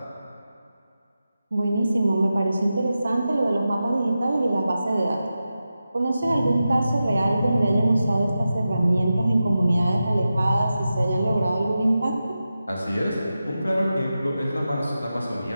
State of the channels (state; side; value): inverted; both; correlation -0.92